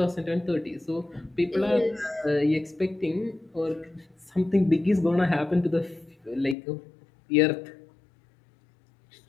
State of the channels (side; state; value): right; drops out; at 6.6 s